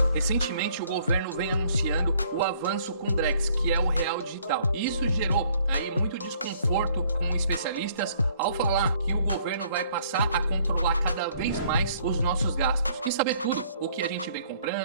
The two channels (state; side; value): inverted; both; correlation -0.62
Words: recentemente o governo vem anunciando o avanço com o Drex, que é o real digital. E isso gerou aí muito desconforto com especialistas ao falar que o governo vai passar a controlar cada vez mais os nossos gastos e saber tudo o que a gente vem